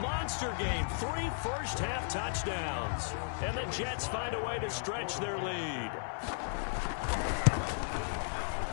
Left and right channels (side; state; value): right; silent; 55 dB below the other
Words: monster game. 3 first-half touchdowns. And the Jets find a way to stretch their lead.